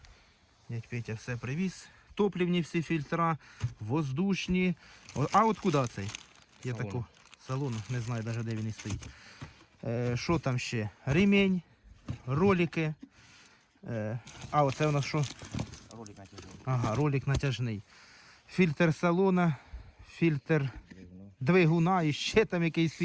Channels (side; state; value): both; identical; correlation 1.00